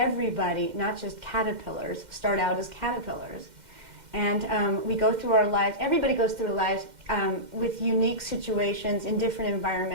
not just caterpillars, start out as caterpillars. And we go through our lives, everybody goes through their lives with unique situations in different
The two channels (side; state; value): left; late; 2.1 ms